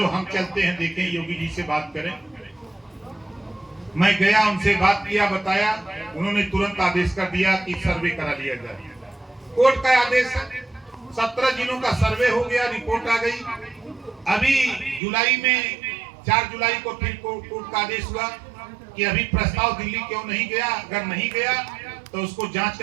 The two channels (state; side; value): drops out; left; at 15.0 s